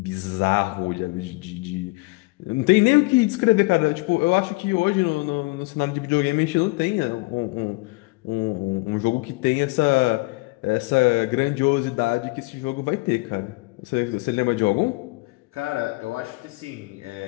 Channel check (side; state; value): right; quieter; 25.1 dB